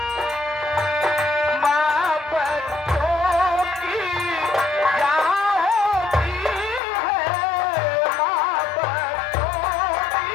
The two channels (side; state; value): right; drops out; at 6.8 s